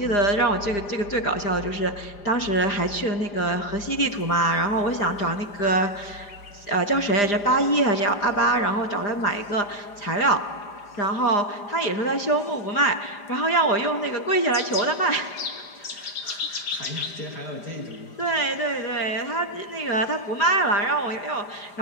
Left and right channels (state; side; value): late; right; 4.9 ms